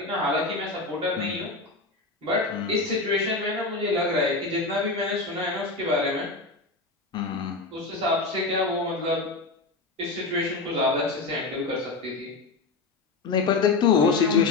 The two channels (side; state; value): right; quieter; 3.6 dB